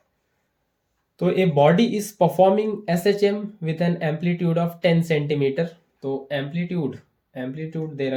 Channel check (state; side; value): identical; both; correlation 1.00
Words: तो a body is performing SHM with an amplitude of 10 centimetre. तो एम्पलीट्यूड दे